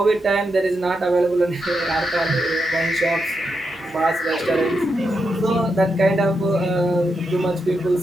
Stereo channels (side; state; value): both; normal; correlation 0.85